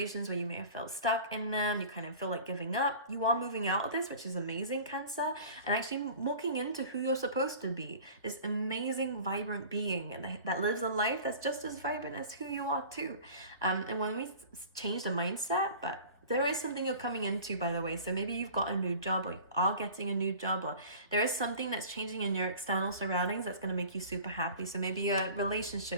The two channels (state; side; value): inverted; both; correlation -0.42